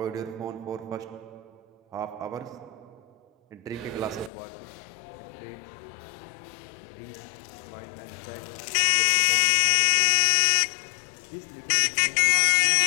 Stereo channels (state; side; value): drops out; right; at 4.3 s